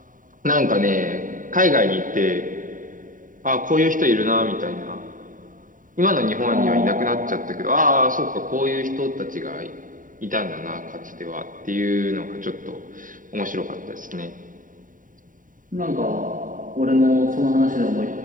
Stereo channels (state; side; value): late; left; 0.39 ms